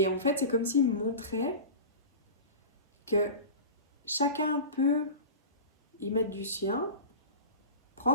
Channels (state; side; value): inverted; both; correlation -0.30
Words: en fait, c'est comme s'il me montrait que chacun peut y mettre du sien,